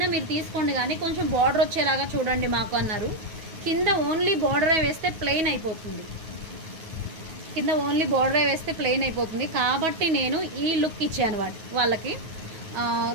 మీరు తీసుకోండి, కానీ కొంచెం బార్డర్ వచ్చేలాగా చూడండి మాకు అన్నారు. కింద ఓన్లీ బార్డరే వేస్తే ప్లెయిన్ అయిపోతుంది, కాబట్టి నేను ఈ లుక్ ఇచ్చాను వాళ్ళకి.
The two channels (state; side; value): late; left; 9.3 ms